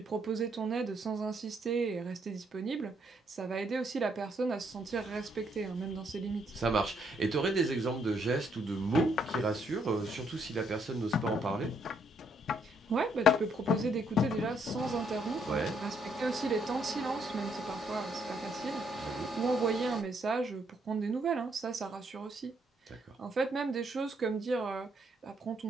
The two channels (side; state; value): both; normal; correlation 0.72